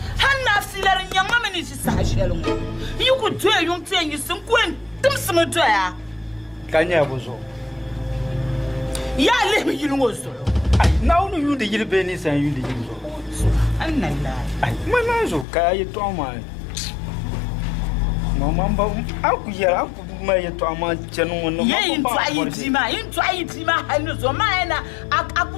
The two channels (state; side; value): drops out; right; at 15.5 s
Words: hanna filar nyanga meni si sahshelungo yukutwe yuntwe yisin kwen tumsimo toya Kanya bozo. Ya le mi yirungo so Ai, na unu yunde yirbe ni san yunde yirzo. annalla Ai, mananzo ka yeto ama. Mama aku ya aku ma yeto ama chenu wono ye intwa idima hanu so maena